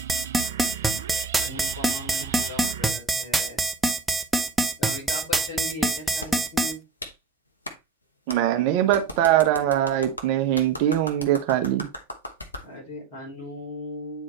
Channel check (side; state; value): left; quieter; 5.8 dB